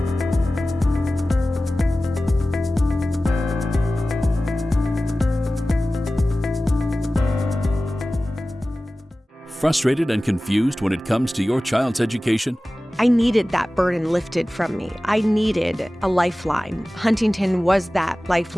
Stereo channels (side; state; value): both; normal; correlation 0.96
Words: Frustrated and confused when it comes to your child's education? I needed that burden lifted from me. I needed a lifeline. Huntington was that